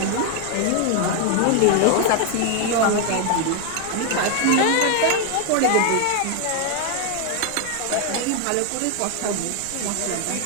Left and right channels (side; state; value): both; different; correlation 0.01